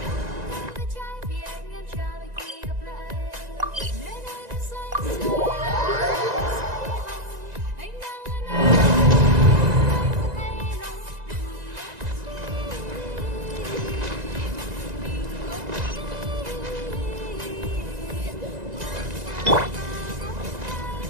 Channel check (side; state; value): left; late; 1.9 ms